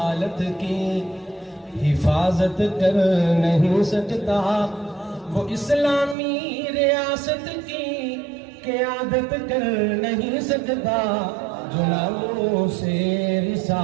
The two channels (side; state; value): left; drops out; at 6.2 s